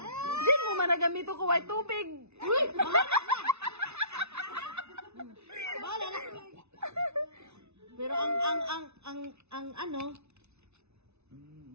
Di mo managamito ko white tubig. Bahala na. Pero ang ano,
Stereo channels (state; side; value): late; left; 0.81 ms